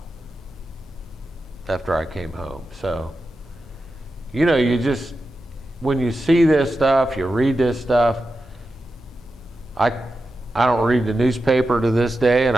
after I came home. So, you know, you just, when you see this stuff, you read this stuff, I I don't read the newspaper to this day, and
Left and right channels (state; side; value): normal; both; correlation 0.91